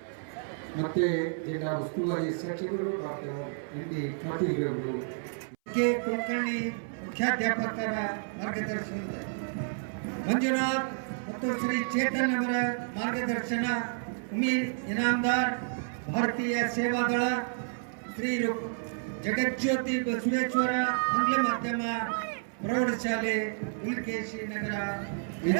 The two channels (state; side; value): silent; left; 58 dB below the other